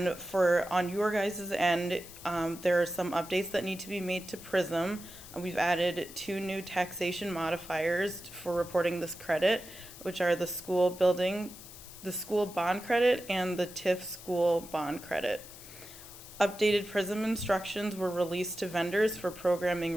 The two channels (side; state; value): left; noise; hiss, 16 dB below the sound